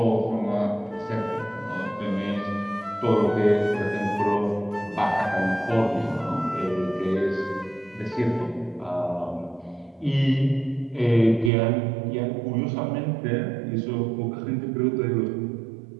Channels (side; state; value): left; drops out; at 11.5 s